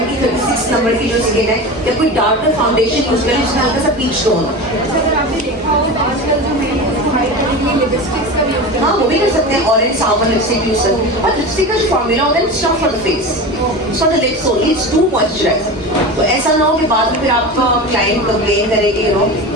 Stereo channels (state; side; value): normal; both; correlation 0.28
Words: की 36 नंबर की जो स्किन है, या कोई डार्कर फाउंडेशन यूज करें जिसमें हल्का सा पीच टोन हो। अगर आपने देखा हो तो आजकल जो मेरी हाइट करने के लिए लिपस्टिक्स का यूज करते हैं, हाँ वो भी कर सकते हैं, ऑरेंज सावन लिपस्टिक यूज करते हैं, और लिपस्टिक का जो फॉर्मूला होता है it's not for the face, it's for the lips only, it's to moisturiser. तो ऐसा ना हो कि बाद में फिर आपका क्लाइंट कंप्लेन करेगी, यू नो,